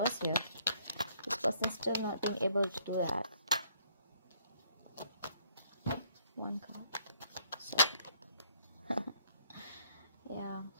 here, this person's still not being able to do that. One card. Yeah.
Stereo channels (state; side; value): inverted; both; correlation -0.65